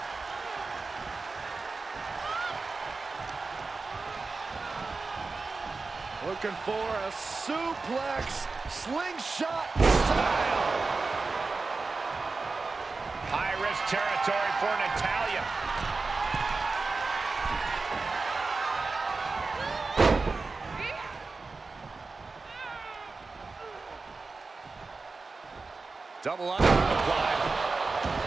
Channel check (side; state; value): left; quieter; 4.0 dB